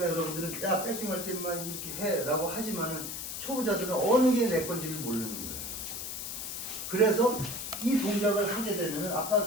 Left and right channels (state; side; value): noise; left; hiss, 6 dB below the sound